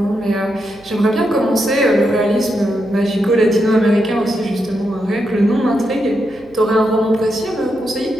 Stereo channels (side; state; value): right; noise; hum, 27 dB below the sound